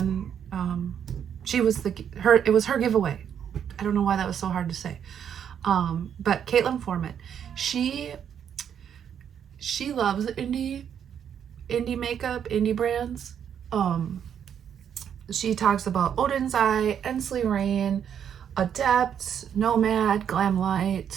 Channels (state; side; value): quieter; left; 8.6 dB